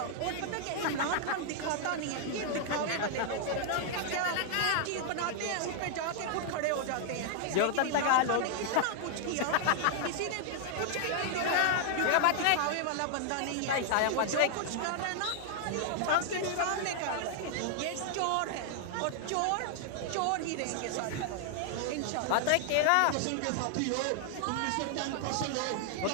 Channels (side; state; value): both; different; correlation 0.00